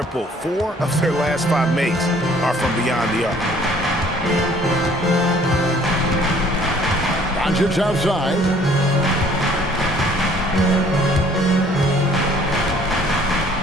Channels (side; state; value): both; normal; correlation 0.57